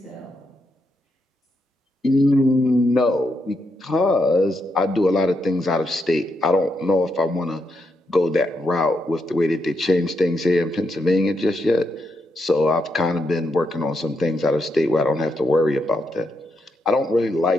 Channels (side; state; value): both; normal; correlation 0.81